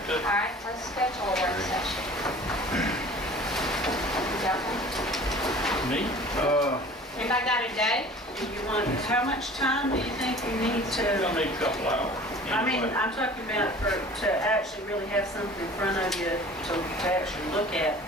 too. All right, let's schedule a work session. Me? Anybody got a day? Do you want, how much time do you think you need We're to? gonna need a couple hours. I mean, anyway. I'm talking about to actually really have something in front of you to actually look at.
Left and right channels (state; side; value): normal; both; correlation 0.45